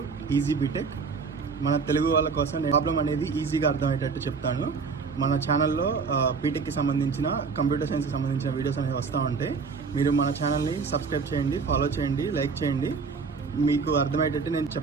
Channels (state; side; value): quieter; left; 5.1 dB